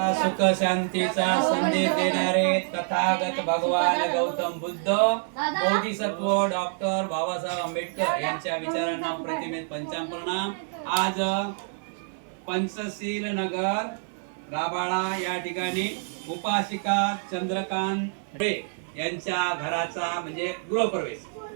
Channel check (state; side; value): silent; left; 60 dB below the other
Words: शांतीचा संदेश देणारे तथागत भगवान गौतम बुद्ध बोधिसत्व डॉक्टर बाबासाहेब आंबेडकर यांच्या विचारांना प्रतिमेत पंचाप्रणाम। आज पंचशील नगर राबाळा या ठिकाणी उपासिका चंद्रकांत यांच्या घराचा म्हणजे गृहप्रवेश